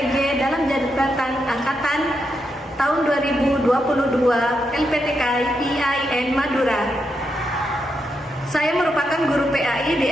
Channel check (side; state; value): both; normal; correlation 0.83